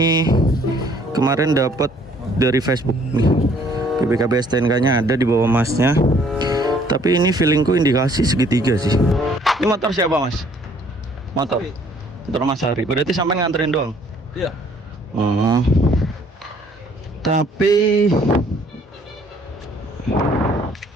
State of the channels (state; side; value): normal; both; correlation 0.60